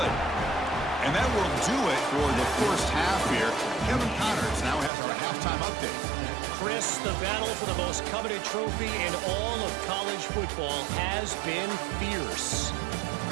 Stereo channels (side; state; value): left; drops out; at 4.9 s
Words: And that will do it for the first half here. Kevin Connors now has our halftime update. Chris, the battle for the most coveted trophy in all of college football has been fierce.